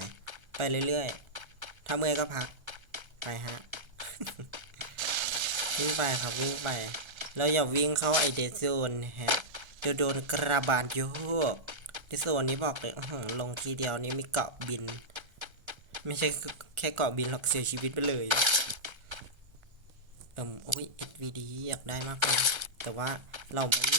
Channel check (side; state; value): left; late; 1.3 ms